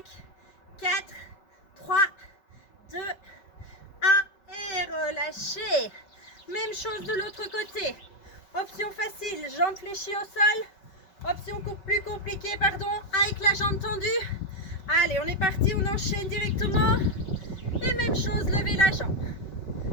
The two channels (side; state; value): right; late; 5.3 ms